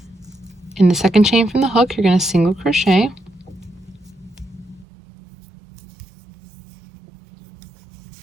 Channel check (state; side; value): drops out; left; at 4.9 s